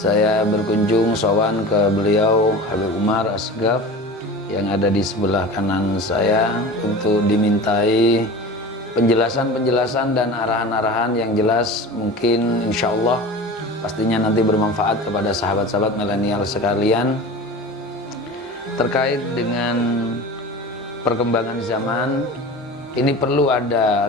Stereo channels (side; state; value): both; normal; correlation 0.34